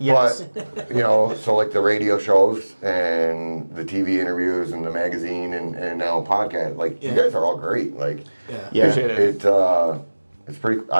But, so like the radio shows and the TV interviews and the magazine and now podcast, you guys are all great. It's pretty,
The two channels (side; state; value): both; inverted; correlation -1.00